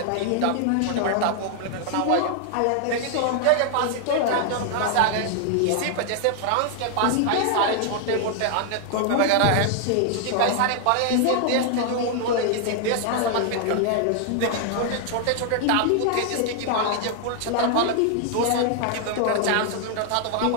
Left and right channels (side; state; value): both; different; correlation 0.00